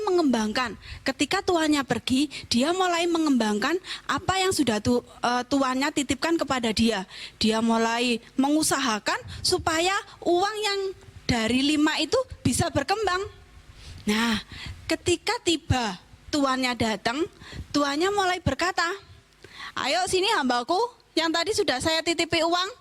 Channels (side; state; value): both; identical; correlation 1.00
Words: mengembangkan. Ketika tuannya pergi, dia mulai mengembangkan apa yang sudah tuannya titipkan kepada dia. Dia mulai mengusahakan supaya uang yang dari 5 itu bisa berkembang. Nah, ketika tiba tuannya datang, tuannya mulai berkata, ayo sini hambaku yang tadi sudah saya titipi uang.